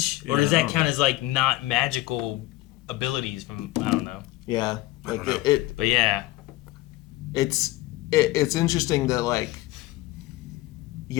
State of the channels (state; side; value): quieter; right; 17.9 dB